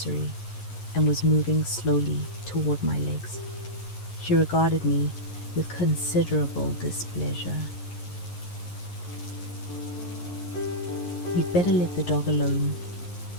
and was moving slowly toward my legs. She regarded me with considerable displeasure. "You'd better let the dog alone,"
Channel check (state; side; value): late; right; 11 ms